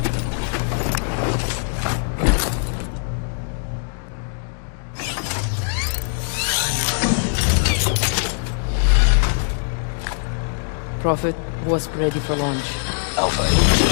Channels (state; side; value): silent; right; digital silence